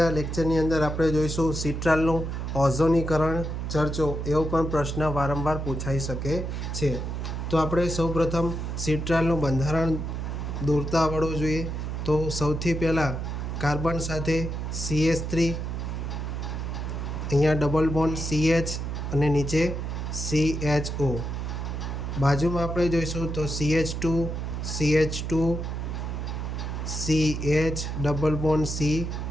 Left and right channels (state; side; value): noise; right; hum, 4 dB below the sound